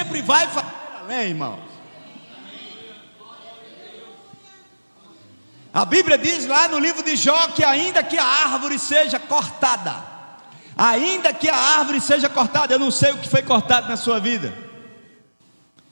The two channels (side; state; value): both; inverted; correlation -1.00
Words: vai fazer além, irmãos. A Bíblia diz lá no livro de Jó que ainda que a árvore seja cortada, ainda que a árvore seja cortada, eu não sei o que foi cortado na sua vida,